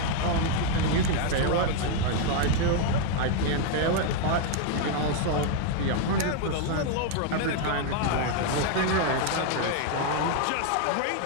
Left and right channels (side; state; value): both; different; correlation 0.00